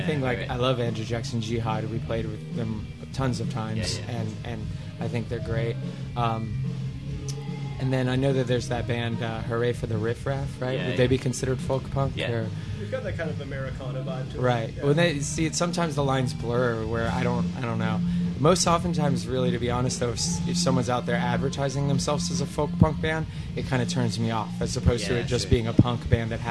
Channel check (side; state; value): both; identical; correlation 1.00